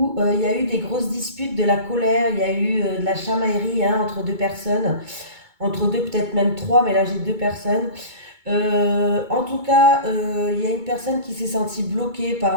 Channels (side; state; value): left; late; 2.2 ms